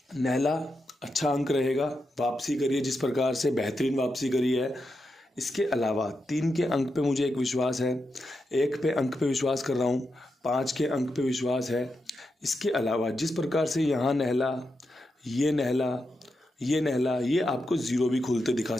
नहला अच्छा अंक रहेगा। वापसी करिए जिस प्रकार से, बेहतरीन वापसी करी है। इसके अलावा 3 के अंक पे मुझे एक विश्वास है, 1 पे अंक पे विश्वास कर रहा हूँ, 5 के अंक पे विश्वास है। इसके अलावा जिस प्रकार से यहाँ नहला, ये नहला, ये नहला, ये आपको ज़ीरो भी खुलते दिखा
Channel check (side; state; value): both; normal; correlation 0.86